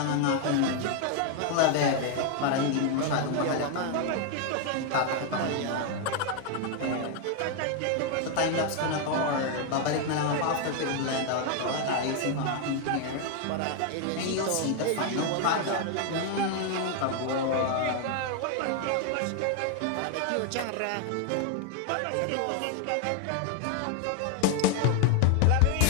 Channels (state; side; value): different; both; correlation 0.01